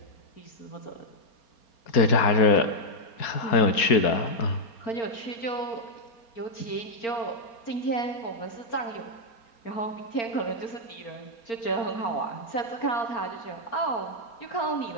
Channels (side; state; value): right; late; 4.3 ms